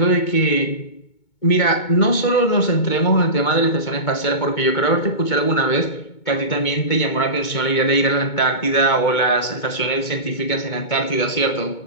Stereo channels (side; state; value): right; late; 2.2 ms